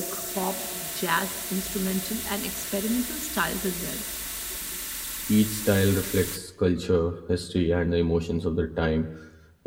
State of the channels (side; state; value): both; identical; correlation 1.00